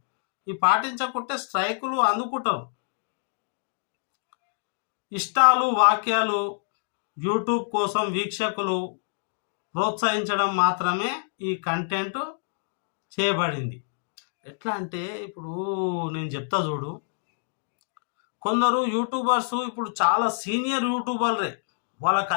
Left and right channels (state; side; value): silent; right; digital silence